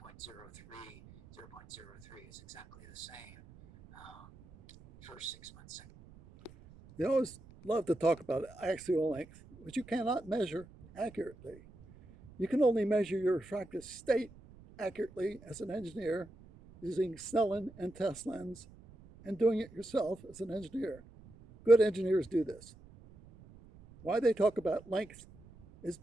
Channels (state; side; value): noise; right; rumble, 21 dB below the sound